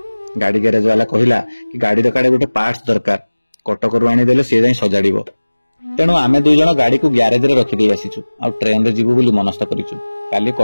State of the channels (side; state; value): both; inverted; correlation -1.00